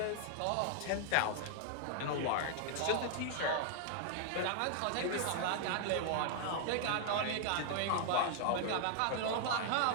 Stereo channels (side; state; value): both; different; correlation 0.00